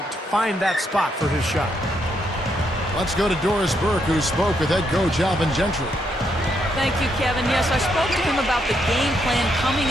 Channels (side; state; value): both; normal; correlation 0.77